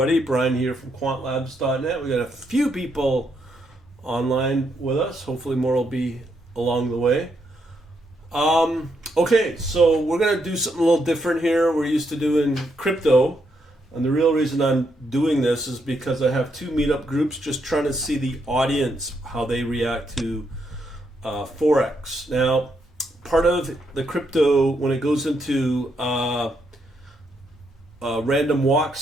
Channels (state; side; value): normal; both; correlation 0.78